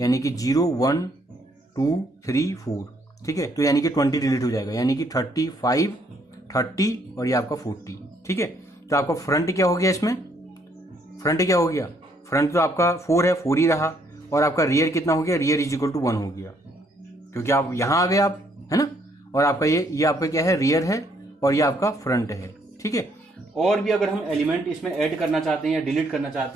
यानी कि 0 1 2 3 4। ठीक है, तो यानी कि 20 डिलीट हो जाएगा, यानी कि 35 30 और ये आपका 40। ठीक है, तो आपका फ्रंट क्या हो गया, इसमें फ्रंट क्या हो गया, फ्रंट तो आपका 4 है, 4 ही रहा, और आपका रियर कितना हो गया, रियर इज इक्वल टू 1 हो गया, क्योंकि आप यहां आ गए आप, है ना। और आपका ये आपका क्या है, रियर है, और ये आपका फ्रंट है। ठीक है, और भी अगर हम एलिमेंट इसमें ऐड करना चाहते हैं या डिलीट करना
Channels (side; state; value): both; normal; correlation 0.69